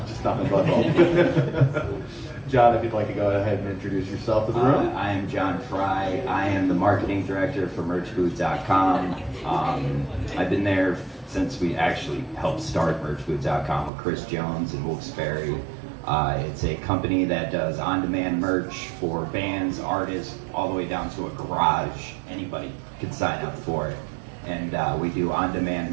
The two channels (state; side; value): drops out; left; at 13.9 s